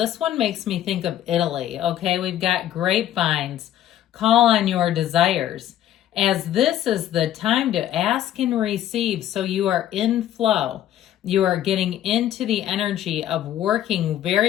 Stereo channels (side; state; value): right; quieter; 11.8 dB